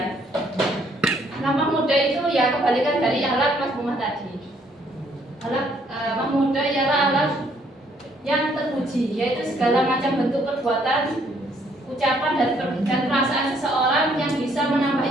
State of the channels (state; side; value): normal; both; correlation 0.67